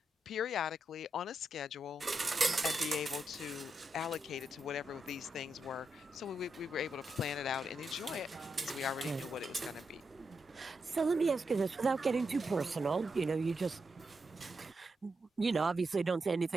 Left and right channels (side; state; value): both; normal; correlation 0.84